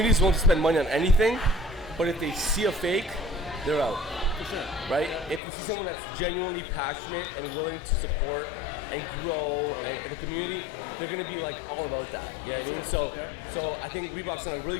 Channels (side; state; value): right; drops out; at 5.4 s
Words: won't spend money on anything, but if they see a fake, they're out. For sure. Right? If you see someone that's genuinely passionate and willing to support and grow in the community, they're going to be like all about that. You know what I mean? So I think Reebok's done a really